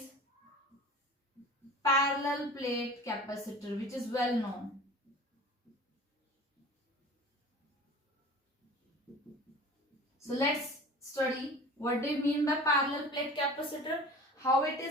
parallel plate capacitor, which is well known. So let's study what do you mean by parallel plate capacitor, how it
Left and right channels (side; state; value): both; normal; correlation 0.40